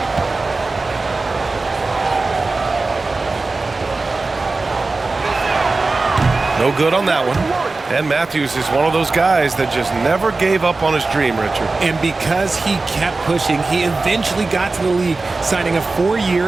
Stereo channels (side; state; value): left; quieter; 3.6 dB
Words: No good on that one. And Matthews is one of those guys that just never gave up on his dream, Richard. And because he kept pushing, he eventually got to the league, signing a